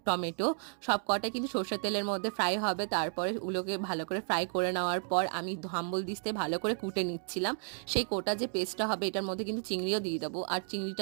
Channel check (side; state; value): left; silent; 56 dB below the other